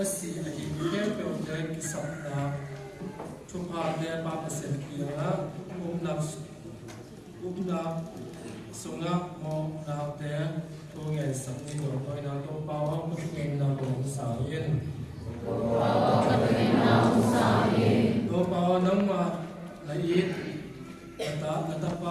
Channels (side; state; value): both; identical; correlation 1.00